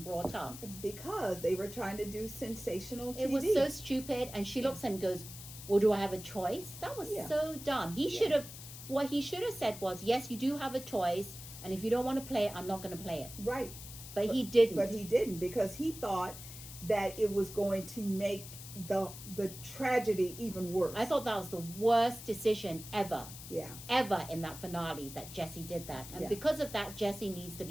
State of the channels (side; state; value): left; noise; hiss, 13 dB below the sound